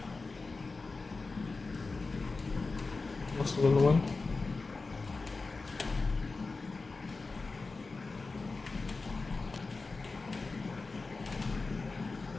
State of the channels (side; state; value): right; quieter; 3.9 dB